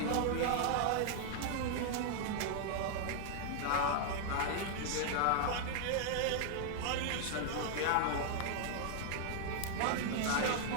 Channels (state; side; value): different; both; correlation 0.00